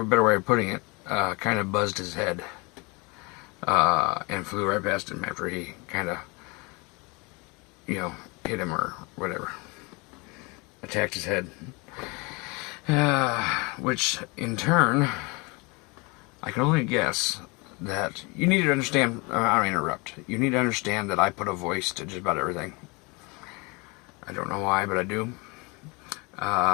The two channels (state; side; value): quieter; right; 28.1 dB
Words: a better way of putting it, kind of buzzed his head, and flew right past him after he kind of, hit him or whatever, attacked his head, which in turn, I can only guess that you need to understand, I don't interrupt, you need to understand that I put a voice to just about everything. I don't know why, but I do.